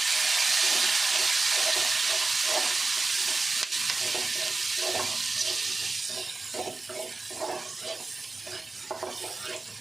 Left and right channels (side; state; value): left; quieter; 3.6 dB